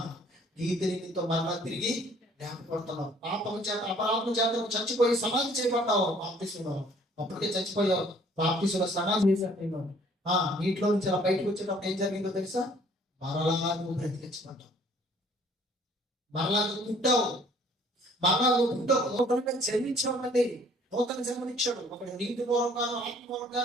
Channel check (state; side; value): normal; both; correlation 0.57